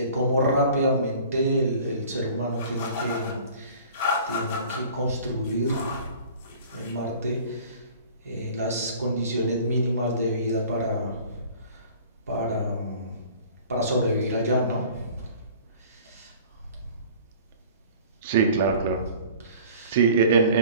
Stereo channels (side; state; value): both; inverted; correlation -0.47